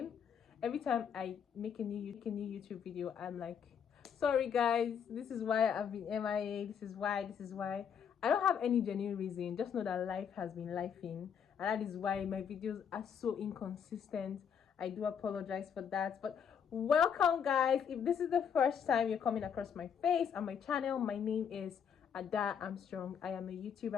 Every time I make a new YouTube video, I'm like, sorry guys, this is why I've been MIA. This is why. I don't have any genuine reason. Just know that life has been lifing, and that is why my videos are so inconsistent. I do apologize for that, but welcome guys. If this is the first time you're coming across my face and my channel, my name is Ada Armstrong. I am a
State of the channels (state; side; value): quieter; right; 7.6 dB